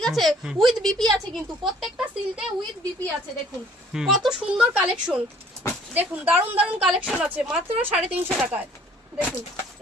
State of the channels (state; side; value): normal; both; correlation 0.57